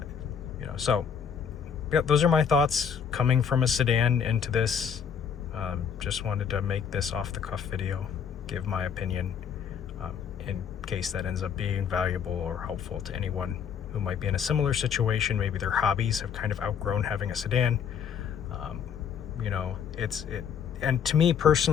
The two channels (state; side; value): quieter; right; 7.4 dB